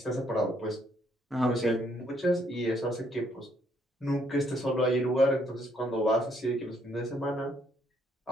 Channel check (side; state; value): both; normal; correlation 0.70